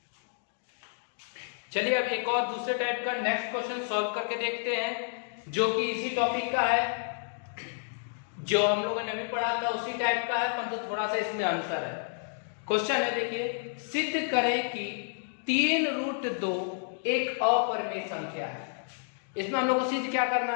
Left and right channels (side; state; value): right; silent; digital silence